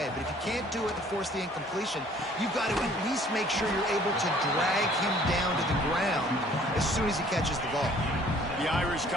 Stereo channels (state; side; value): normal; both; correlation 0.56